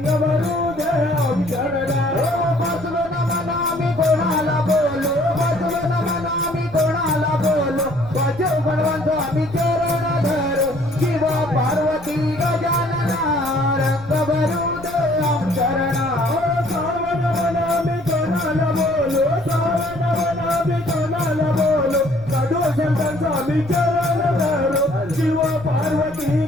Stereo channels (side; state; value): left; noise; rumble, 18 dB below the sound